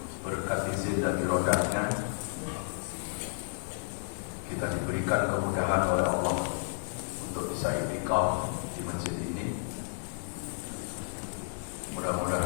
berkat izin dan iradahnya kita diberikan kemudahan oleh Allah untuk bisa i'tikaf di masjid ini.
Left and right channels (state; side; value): silent; right; digital silence